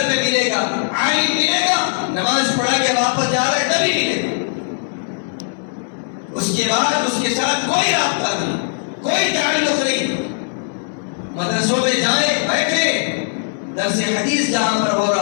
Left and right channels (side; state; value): right; silent; digital silence